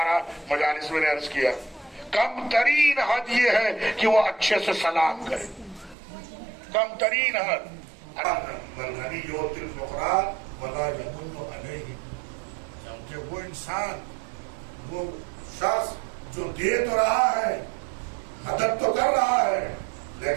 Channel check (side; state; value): left; drops out; at 6.0 s